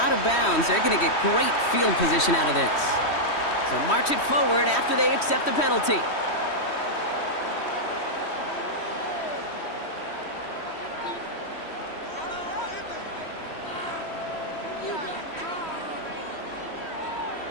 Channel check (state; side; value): late; right; 3.1 ms